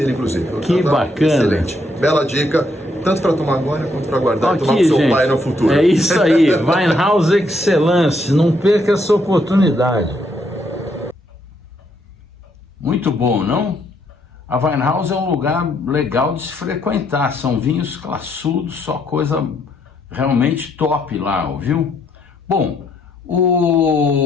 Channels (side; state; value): both; normal; correlation 0.73